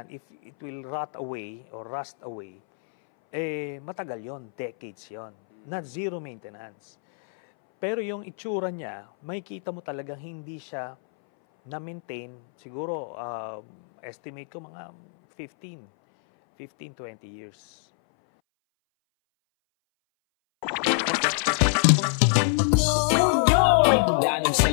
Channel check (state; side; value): silent; right; 61 dB below the other